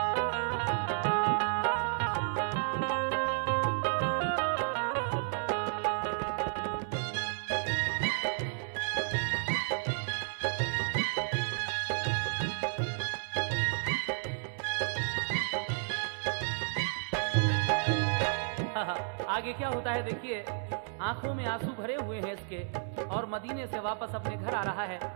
आगे क्या होता है देखिए, आंखों में आंसू भरे हुए हैं इसके, और मदीने से वापस अपने घर आ रहा है।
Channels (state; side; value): silent; left; digital silence